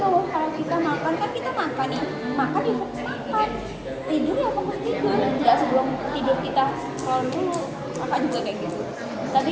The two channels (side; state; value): both; identical; correlation 1.00